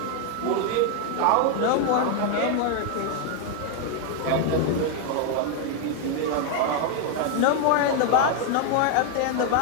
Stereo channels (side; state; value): both; different; correlation 0.00